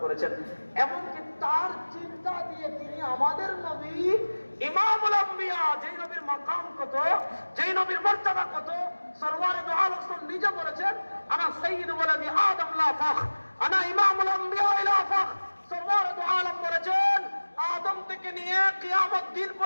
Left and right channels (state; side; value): inverted; both; correlation -1.00